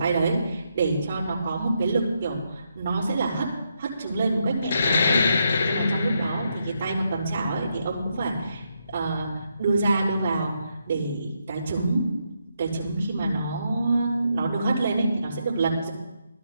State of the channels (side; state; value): both; inverted; correlation -0.80